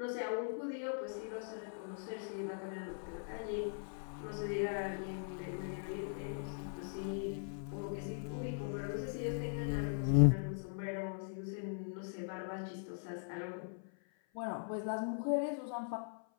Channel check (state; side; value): silent; right; 51 dB below the other